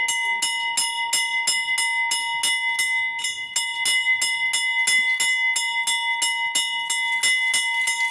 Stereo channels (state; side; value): identical; both; correlation 1.00